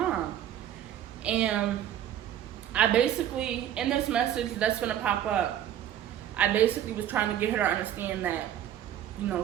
And I basically, in this message that's gonna pop up, I basically was trying to get her to understand that, you know,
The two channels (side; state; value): left; quieter; 10.8 dB